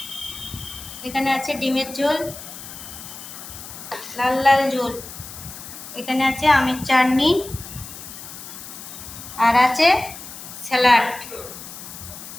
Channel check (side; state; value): left; noise; hiss, 13 dB below the sound